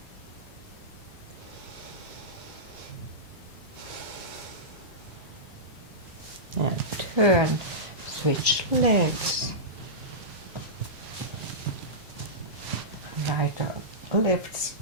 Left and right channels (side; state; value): both; normal; correlation -0.15